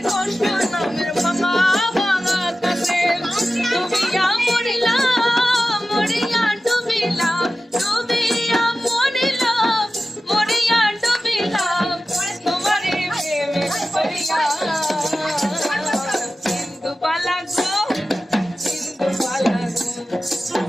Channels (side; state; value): both; normal; correlation 0.94